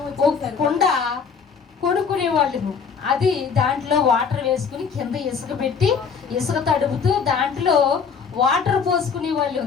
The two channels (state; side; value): quieter; right; 6.0 dB